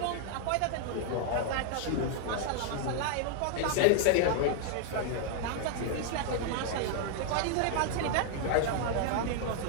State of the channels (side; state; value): both; different; correlation 0.00